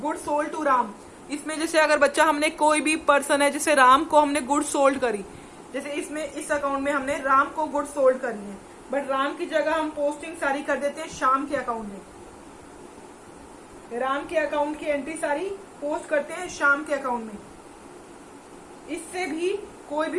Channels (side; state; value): both; identical; correlation 1.00